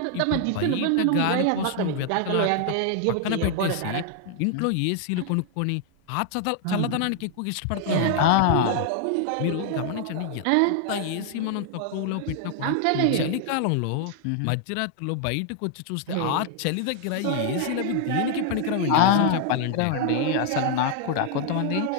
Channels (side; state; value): both; different; correlation 0.00